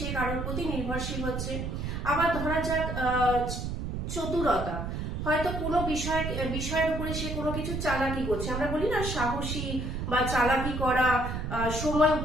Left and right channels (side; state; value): right; noise; rumble, 3 dB below the sound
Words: কারোর প্রতি নির্ভরশীল হচ্ছে। আবার ধরা যাক চতুরতা, হয়তো কোনো বিষয়ের উপরে সে কোনো কিছু চালাকি করছে, আমরা বলি না সাহসী বা চালাকি করা, সময়